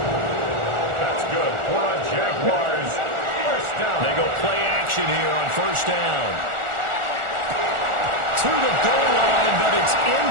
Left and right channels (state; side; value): late; left; 1.4 ms